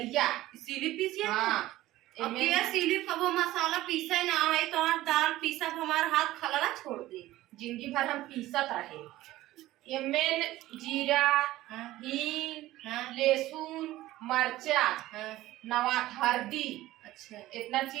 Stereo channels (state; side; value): quieter; left; 16.1 dB